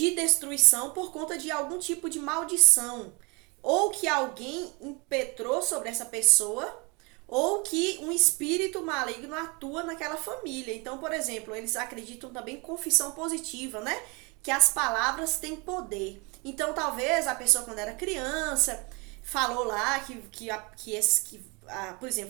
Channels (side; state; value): left; quieter; 29.6 dB